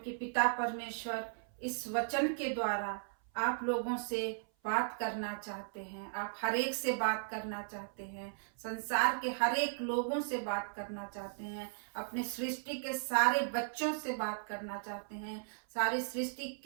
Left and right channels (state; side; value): silent; left; 53 dB below the other